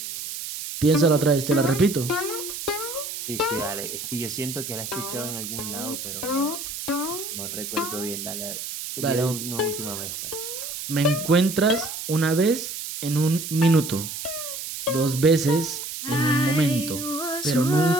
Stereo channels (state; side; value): noise; right; hiss, 7 dB below the sound